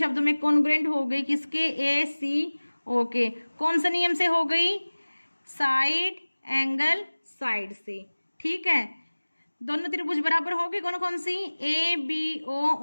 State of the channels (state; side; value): inverted; both; correlation -1.00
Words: में कॉन्ग्रुएंट हो गई किसके, ए सी ओ के। कौन सा नियम से हो गई, साइड एंगल साइड से। ठीक है। दोनों त्रिभुज बराबर हो गई, कौन कौन सी, ए बी ओ